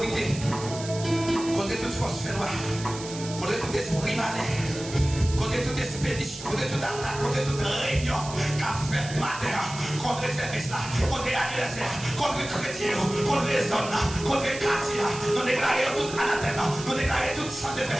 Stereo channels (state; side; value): noise; right; hiss, 12 dB below the sound